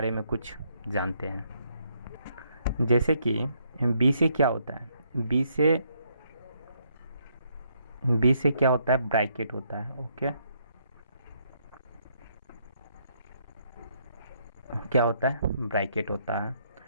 में कुछ जानते हैं। जैसे कि बी से क्या होता है, बी से क्या होता है, ब्रैकेट होता है। ओके, क्या होता है, ब्रैकेट होता है।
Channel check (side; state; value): both; inverted; correlation -0.72